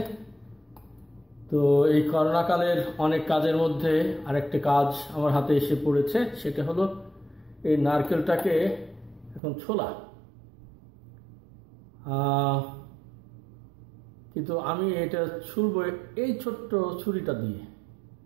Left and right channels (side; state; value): left; drops out; at 9.4 s